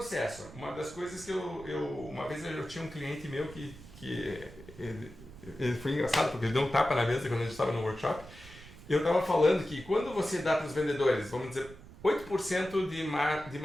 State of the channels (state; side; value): noise; right; rumble, 18 dB below the sound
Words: Uma das coisas que uma vez eu tinha um cliente meu que ele foi engraçado, porque ele deu um tapa na mesa quando a gente estava no workshop. Eu estava falando que quando você dá para os vendedores, vamos dizer, 8% de